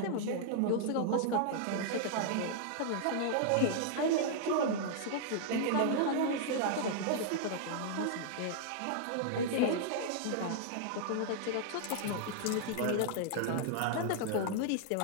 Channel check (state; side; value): different; both; correlation -0.01